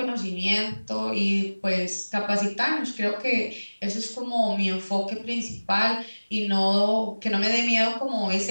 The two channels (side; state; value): both; inverted; correlation -1.00